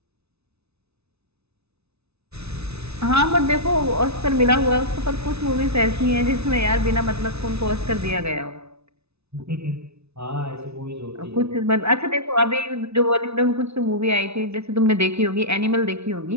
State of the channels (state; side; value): late; left; 0.80 ms